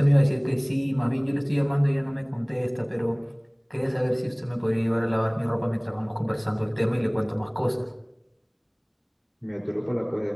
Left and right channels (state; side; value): identical; both; correlation 1.00